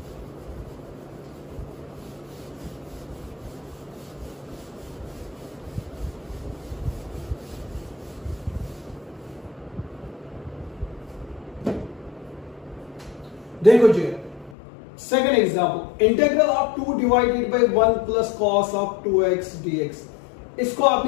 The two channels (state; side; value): drops out; right; at 14.6 s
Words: देखो जी, second example, integral of 2 divided by 1 plus cos of 2x dx। इसको